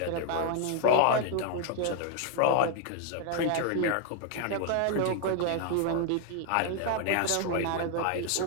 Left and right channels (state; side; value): different; both; correlation 0.00